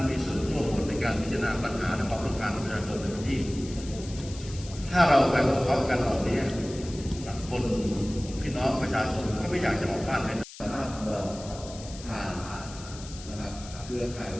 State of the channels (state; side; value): noise; left; hiss, 15 dB below the sound